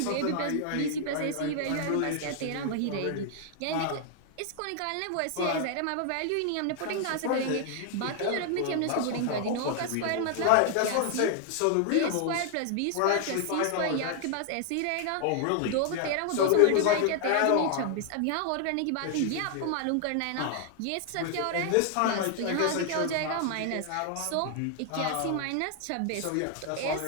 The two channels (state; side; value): different; both; correlation 0.00